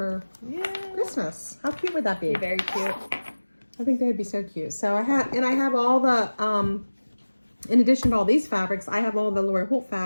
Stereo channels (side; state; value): both; inverted; correlation -1.00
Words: Christmas. How cute would that be? Very cute. I think they'd be so cute. So I have all the in addition to all these fabrics, I have all the Lori Holt